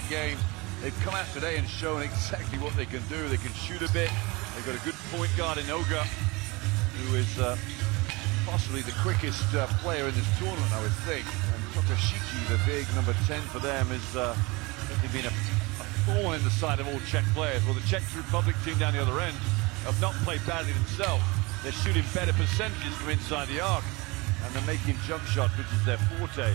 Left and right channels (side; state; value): left; quieter; 25.0 dB